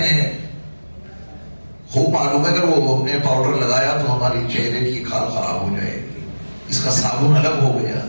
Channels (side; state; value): both; inverted; correlation -1.00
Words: ہیں۔ خوب معلوم ہے اگر وہ ہم نے پاؤڈر لگایا تو ہماری چہرے کی کھال خراب ہو جائے گی، اس کا صابن الگ ہو گیا،